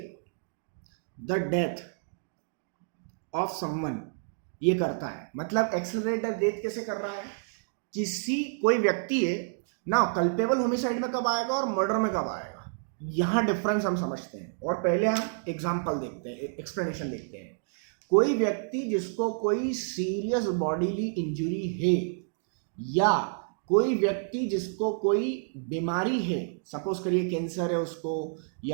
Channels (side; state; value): left; silent; digital silence